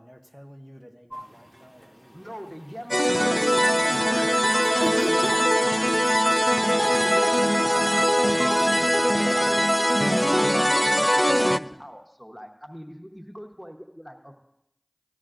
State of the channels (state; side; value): identical; both; correlation 1.00